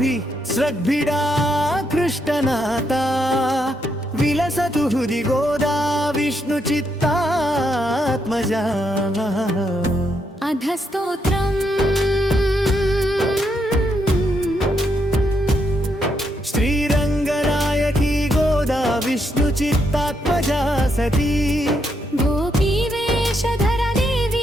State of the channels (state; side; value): normal; both; correlation 0.78